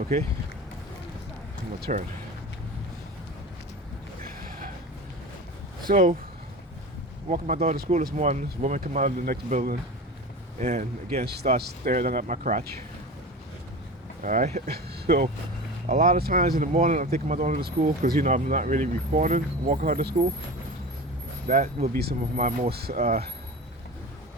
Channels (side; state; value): both; normal; correlation 0.31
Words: I'm gonna turn. So, walking my daughter to school this morning, this woman come out of the next building, and again she starts staring at my crotch. Alright? So a lot of times in the morning I'm taking my daughter to school because, you know, I'm not really recording, walking her to school. That will be some of my most